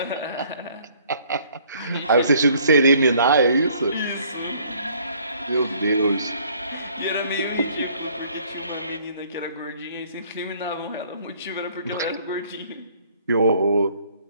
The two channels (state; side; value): inverted; both; correlation -0.60